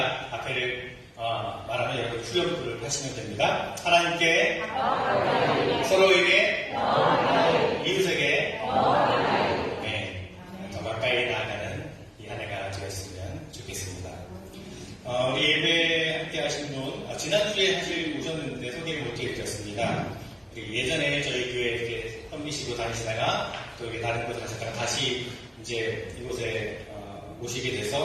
앞에를 말하면 여러분 후렴구를 하시면 됩니다. 하나님께, 서로에게, 이웃에게, 네, 더 가까이 나아가는 이 한 해가 되었으면 좋겠습니다. 우리 예배 함께 하신 분, 지난주에 사실 오셨는데 소개를 못 해드렸습니다. 예전에 저희 교회 이렇게 험비시고 다니시다가 또 여기 다른 곳에 가셨다가 다시 이제 이곳에 오시게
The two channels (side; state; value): both; identical; correlation 1.00